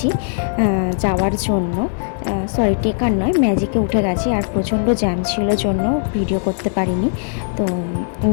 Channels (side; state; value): right; silent; 58 dB below the other